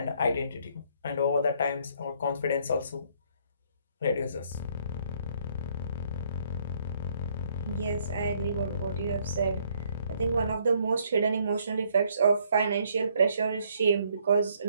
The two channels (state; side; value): inverted; both; correlation -0.67